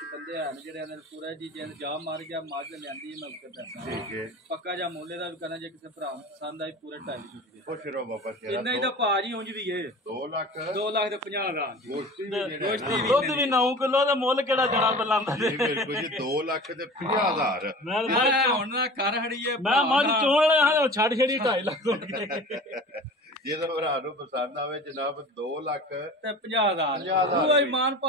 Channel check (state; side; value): normal; both; correlation 0.38